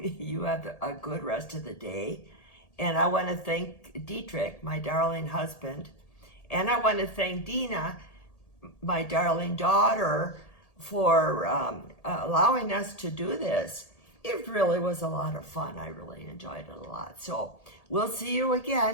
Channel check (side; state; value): right; late; 1.8 ms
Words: have a good rest of the day, and I want to thank Dietrich, my darling husband, and I want to thank Dena, my darling daughter, for allowing us to do this. It really was a lot of fun. I really enjoyed it a lot. So we'll see you